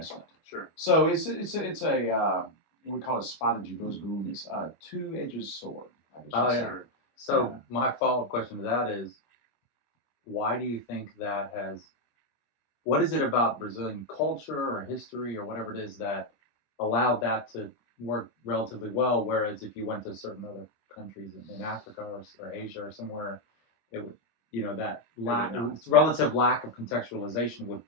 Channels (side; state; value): right; late; 25 ms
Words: Sure. So it's a we call it espada de dois gumes, two-edged sword. I guess Oh, you'd yeah. say. Sure. So Yeah. my follow-up question to that is, why do you think that has? What is it about Brazilian culture or history or whatever it is that allowed that to work relatively well? Whereas if you went to certain other countries in Africa or Asia or somewhere, it would, that relative lack of contextualization would